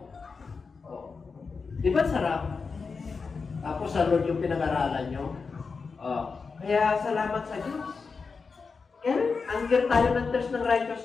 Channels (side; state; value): right; quieter; 4.9 dB